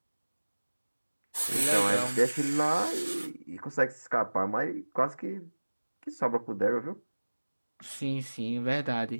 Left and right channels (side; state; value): both; inverted; correlation -1.00